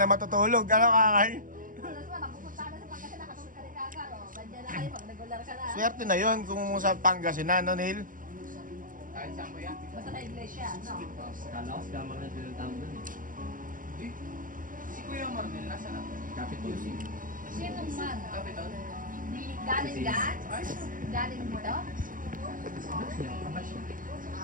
matutulog. Ano kakay? Alas na, napupunta na sa Pangasinan, nakatulog ka rin kakar. Nandiyan na kayo, pag regular ka na. Swerte na yun kung sa Pangasinan, no, Neil? Kahit saan ba yan? Basta na iglesia, no? Kala ko si Kamar na pinuntahan doon eh. Si Kuya Marnel, nasa na? Capitol C. Sino man? Capitol? Galing dyan? Galing dito? Ba't siya? Kapas siya.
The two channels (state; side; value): late; left; 0.39 ms